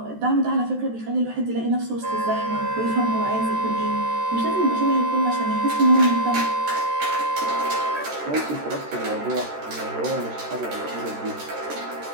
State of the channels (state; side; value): late; left; 13 ms